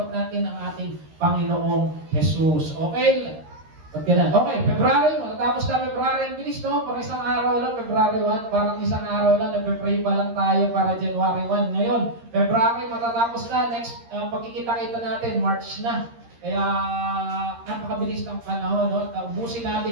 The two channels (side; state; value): left; late; 13 ms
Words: natin ang ating Panginoong Jesus. Okay? Okay, February, matatapos na February, ang bilis, no? Parang isang araw lang, February 1, parang isang araw lang, nagpe-pray pa lang tayo para January 1. Ngayon, February, matatapos na, next, pagkikita-kita natin, March na. Kaya, napakabilis ng panahon, no? Ubusin